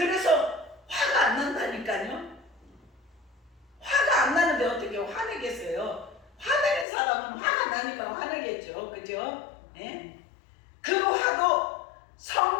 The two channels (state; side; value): drops out; right; at 6.9 s